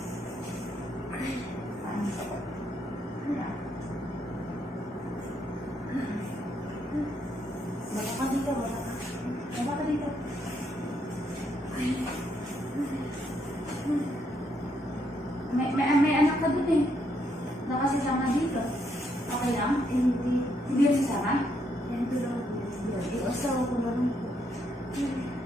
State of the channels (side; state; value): both; normal; correlation 0.75